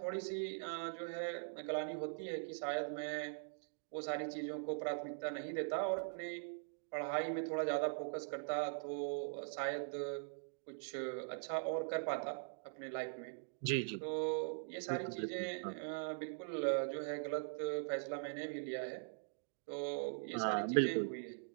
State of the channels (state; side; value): silent; left; digital silence